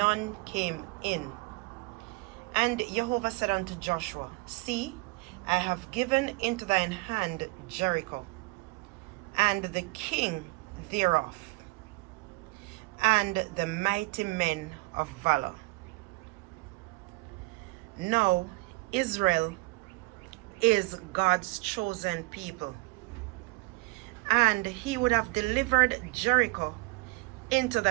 came in. And Jehovah said unto Joshua, See, I have given into thine hand Jericho, and the king thereof, and the mighty men of valor. Now Israel is God's chosen people, and he would have delivered Jericho into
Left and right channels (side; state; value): left; quieter; 24.8 dB